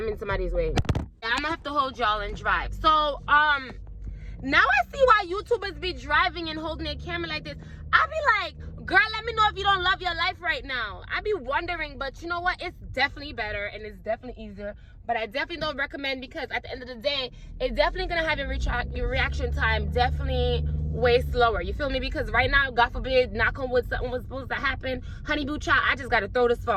in somebody's way. I'm gonna have to hold y'all and drive. So, now I see why YouTubers be driving and holding their camera like this. I be like, girl, let me know if you don't love your life right now. I be wondering, but you know what? It's definitely better and it's definitely easier. But I definitely don't recommend, because at the end of the day, it's definitely gonna have your reaction time definitely way slower. You feel me? Because right now, God forbid, knock on wood, something was supposed to happen. Honey boo child, I just gotta throw this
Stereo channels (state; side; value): identical; both; correlation 1.00